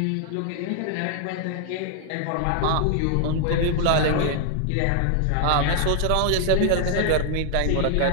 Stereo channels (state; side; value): different; both; correlation 0.00